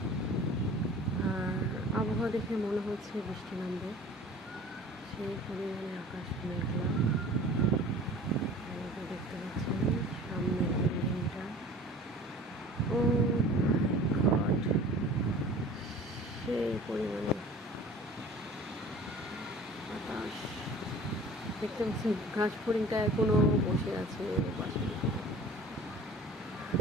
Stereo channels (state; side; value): normal; both; correlation 0.44